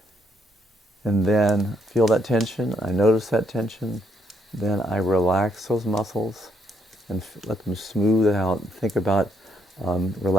And then feel that tension. I notice that tension. Then I relax those muscles and let them smooth out. Think about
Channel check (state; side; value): normal; both; correlation 0.73